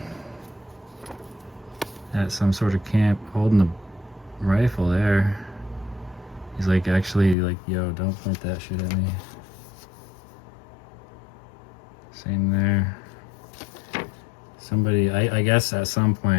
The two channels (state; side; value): drops out; right; at 7.4 s